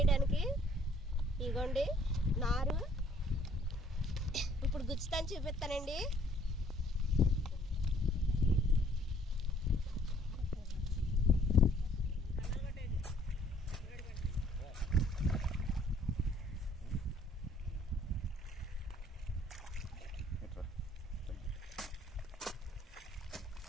ఇగోండి నారు, ఇప్పుడు గుచ్చుతాను చూపిస్తానండి.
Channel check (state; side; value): normal; both; correlation 0.60